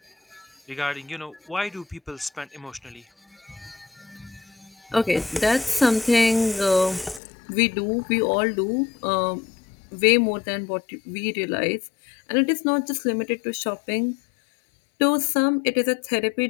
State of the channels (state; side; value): drops out; right; at 7.2 s